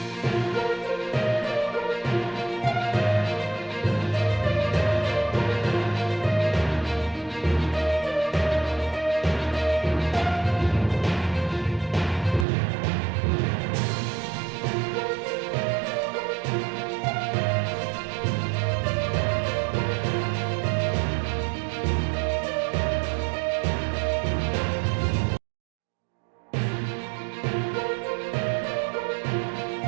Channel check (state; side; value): drops out; left; at 12.5 s